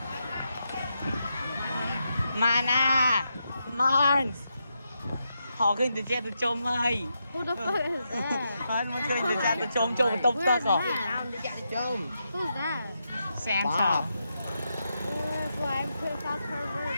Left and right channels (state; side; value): inverted; both; correlation -0.84